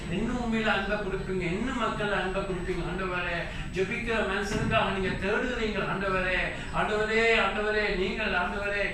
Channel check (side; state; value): both; identical; correlation 1.00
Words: இன்னும் உண்மையில அன்பை கொடுப்பீங்க, இன்னும் மக்கள் அன்பை கொடுப்பீங்க ஆண்டவரே. ஜெபிக்கிற மனுஷனுக்காக நீங்க தேடுகிறீங்க ஆண்டவரே நீங்கள் ஆண்டவரே